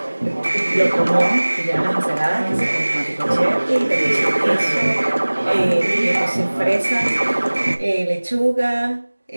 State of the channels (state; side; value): inverted; both; correlation -1.00